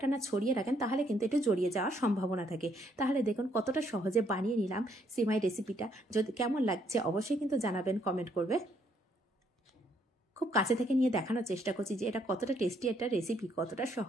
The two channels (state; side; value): normal; both; correlation 0.70